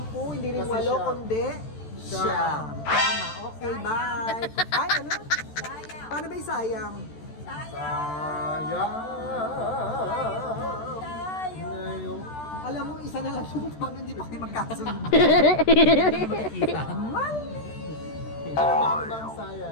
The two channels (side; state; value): right; late; 13 ms